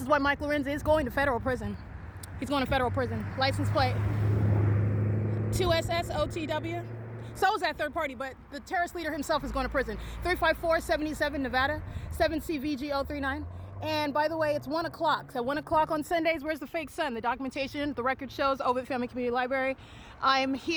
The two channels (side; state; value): both; identical; correlation 1.00